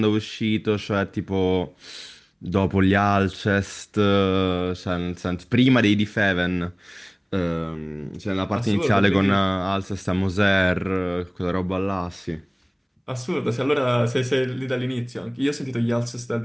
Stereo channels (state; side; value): identical; both; correlation 1.00